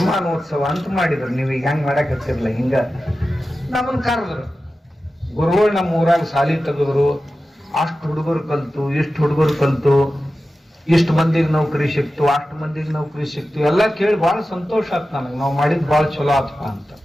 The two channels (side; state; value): both; normal; correlation 0.94